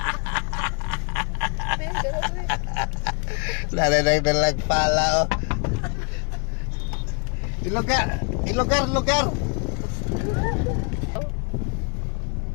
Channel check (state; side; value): quieter; right; 38.6 dB